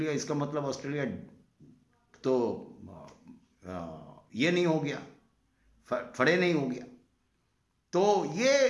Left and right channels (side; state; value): both; identical; correlation 1.00